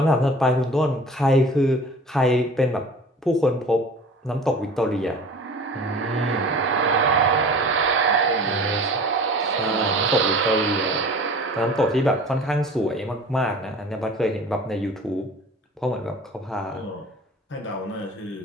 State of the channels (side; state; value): both; normal; correlation 0.43